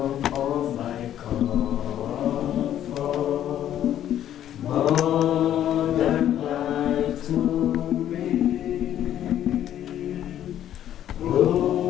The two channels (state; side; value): quieter; right; 11.2 dB